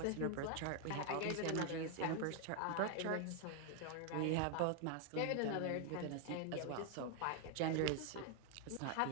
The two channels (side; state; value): both; different; correlation 0.01